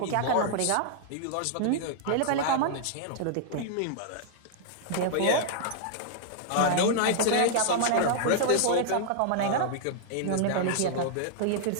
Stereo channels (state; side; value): different; both; correlation -0.01